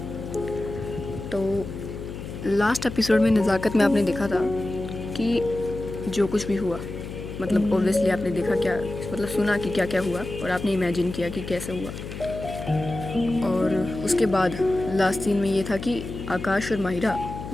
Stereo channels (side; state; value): left; noise; hum, 9 dB below the sound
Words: तो लास्ट एपिसोड में नज़ाकत में आपने देखा था कि जो कुछ भी हुआ, मतलब ऑब्वियसली आपने देखा क्या, मतलब सुना कि क्या क्या हुआ और आपने इमेजिन किया कि कैसे हुआ। और उसके बाद लास्ट सीन में ये था कि आकाश और माहिरा